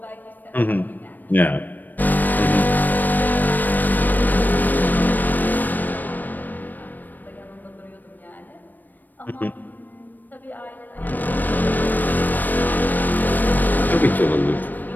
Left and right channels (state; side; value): late; right; 0.088 ms